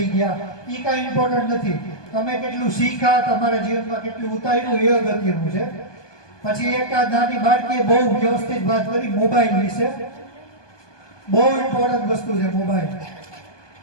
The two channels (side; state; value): right; late; 1.2 ms